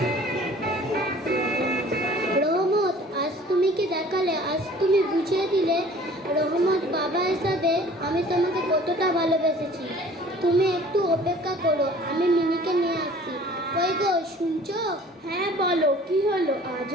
রহমত, আজ তুমি কি দেখালে, আজ তুমি বুঝিয়ে দিলে রহমত বাবা হিসাবে আমি তোমাকে কতটা ভালোবেসেছি। তুমি একটু অপেক্ষা করো, আমি মিনিকে নিয়ে আসছি। ওই গো, শুনছো? হ্যাঁ বলো, কি হলো?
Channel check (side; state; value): both; normal; correlation 0.49